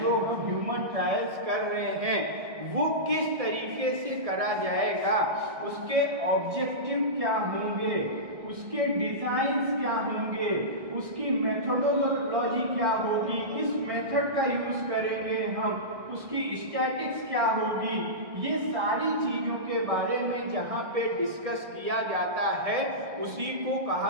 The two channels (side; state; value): left; late; 1.7 ms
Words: हम ह्यूमन ट्रायल्स कर रहे हैं, वो किस तरीके से करा जाएगा, उसके ऑब्जेक्टिव क्या होंगे, उसके डिजाइन्स क्या होंगे, उसकी मेथोडोलॉजी क्या होगी, किस मेथड का यूज करेंगे हम, उसकी स्टैटिक्स क्या होगी, ये सारी चीजों के बारे में जहां पे डिस्कस किया जाता है उसी को